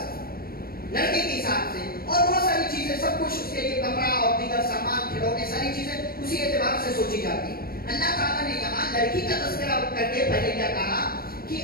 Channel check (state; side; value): late; right; 0.44 ms